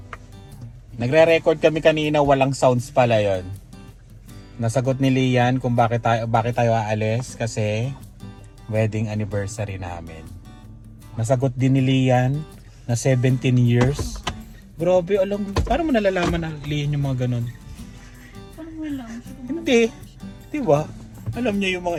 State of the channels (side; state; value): both; identical; correlation 1.00